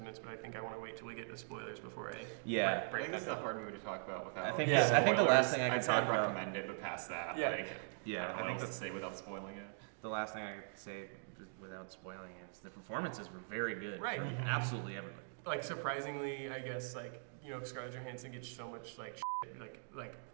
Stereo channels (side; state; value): left; silent; digital silence